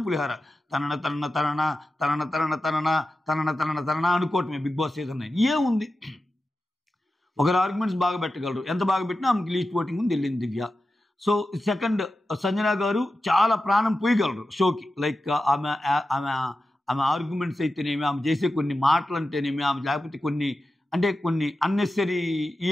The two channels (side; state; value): both; normal; correlation 0.92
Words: తనన అనుకోవటమే బిగ్ బాస్ సీజన్ 9. ఏముంది, ఒకరు ఆర్గ్యుమెంట్స్ బాగా పెట్టగలరు, ఎంత బాగా పెట్టినా ఆమెకి లీస్ట్ ఓటింగ్ ఉంది, వెళ్ళింది దివ్య. సో సెకండ్ సంజన గారు చాలా ప్రాణం పోయగలరు షోకి. లైక్ ఆమె ఆర్గ్యుమెంట్స్ అయితేనేమి, ఆమె చేసే కొన్ని మాటలు అంటేనేమి, ఆమె లేకపోతే కొన్ని అన్నెసరీ